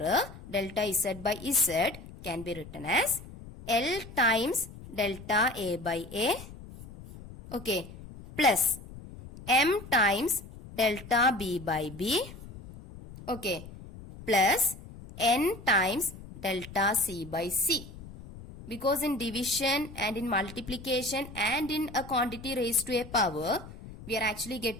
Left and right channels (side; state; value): left; noise; rumble, 15 dB below the sound